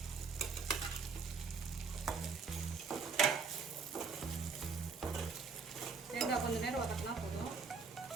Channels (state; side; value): quieter; left; 5.0 dB